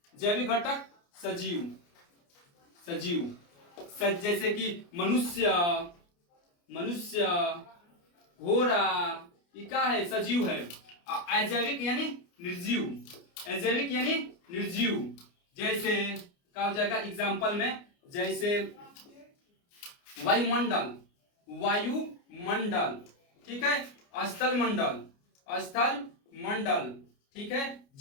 जैविक घटक सजीव जैसे कि मनुष्य घोड़ा, ये क्या है? सजीव है। अजैविक यानी निर्जीव, जैसे क्या हो जाएगा एग्जाम्पल में? जैसे वायुमंडल, ठीक है, स्थल मंडल, ठीक है,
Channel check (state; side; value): late; right; 29 ms